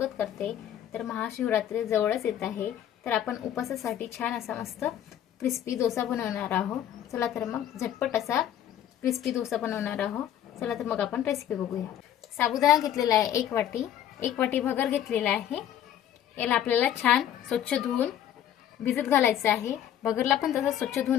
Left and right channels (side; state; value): right; quieter; 10.7 dB